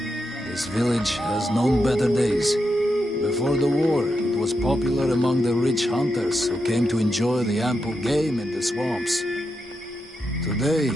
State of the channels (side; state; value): both; normal; correlation 0.86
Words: This village has known better days. Before the war, it was popular among the rich hunters who came to enjoy the ample game in the swamps. Today,